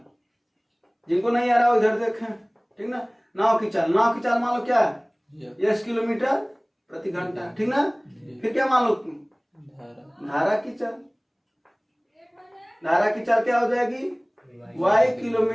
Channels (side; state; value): both; identical; correlation 1.00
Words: जिनको नहीं आ रहा वो इधर देखें, ठीक ना? नाव की चाल मान लो क्या? 10 किलोमीटर प्रति घंटा, ठीक ना? फिर क्या मान लो? धारा की चाल, धारा की चाल क्या हो जाएगी? y